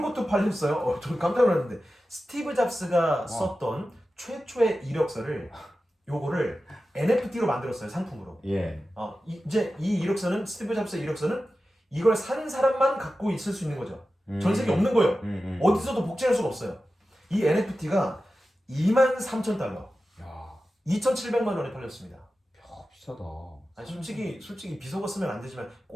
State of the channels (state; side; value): normal; both; correlation 0.93